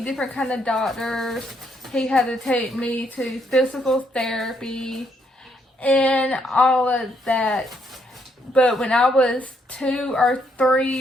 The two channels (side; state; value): both; normal; correlation 0.73